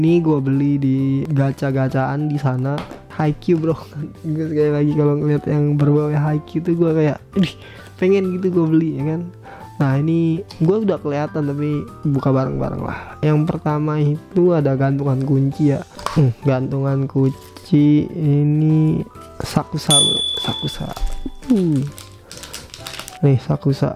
gue beli di gacha-gacaan di sana. Haikyuu bro. Gue sekali lagi kalau ngeliat yang berbau Haikyuu tuh gue kayak pengen gitu gue beli ya kan. Nah ini gue udah kelihatan tapi buka bareng-bareng lah. Yang pertama itu ada gantungan kunci ya. Gantungan kunci ini Sakusa bro. Nih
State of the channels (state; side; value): identical; both; correlation 1.00